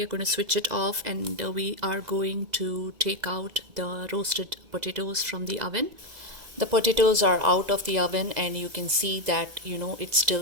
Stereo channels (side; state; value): left; late; 2.0 ms